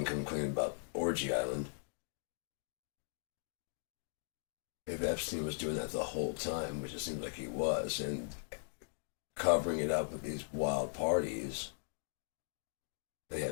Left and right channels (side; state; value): right; silent; digital silence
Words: come clean about Orgy Island, if Epstein was doing that the whole time, which it seems like he was, and covering it up with these wild parties, they